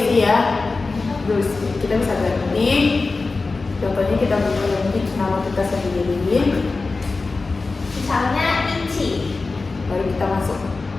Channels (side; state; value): right; quieter; 3.8 dB